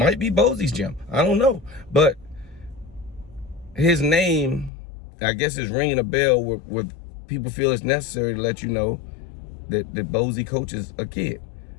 be Bosey's gym. I don't know. But his name, I guess, is ringing a bell where people feel it's necessary to let you know that Bosey coaches a kid.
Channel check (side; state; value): right; drops out; at 4.7 s